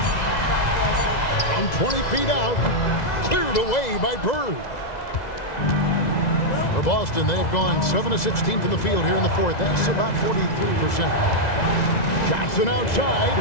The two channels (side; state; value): right; late; 2.0 ms